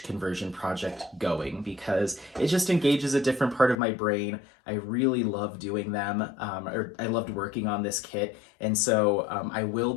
conversion project going, because it just engages a different part of my brain. I really love doing them, or I loved working on this kit, and so I will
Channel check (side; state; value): right; drops out; at 3.8 s